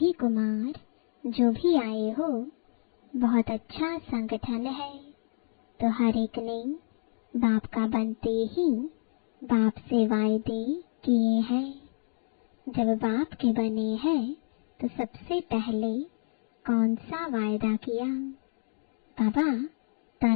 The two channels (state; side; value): silent; right; digital silence